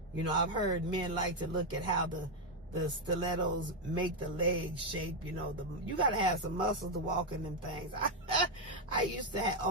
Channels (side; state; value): both; normal; correlation 0.03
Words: I've heard men like to look at how the stilettos make the legs shape. You got to have some muscles to walk in them things. I used to